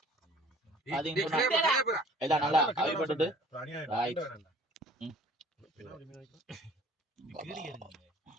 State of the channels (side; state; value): both; normal; correlation 0.51